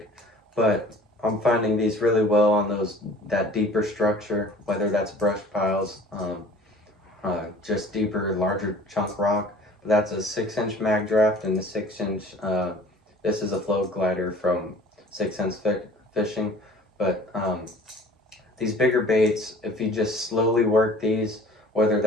But I'm finding these really well on that deeper structure, whether that's brush piles, just deeper, larger chunk rock. But that's a 6-inch mag draft and the 6-inch. This is a float glider from 6 Sense Fishing. But these bigger baits, if you just slowly work these, whether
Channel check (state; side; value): normal; both; correlation 0.48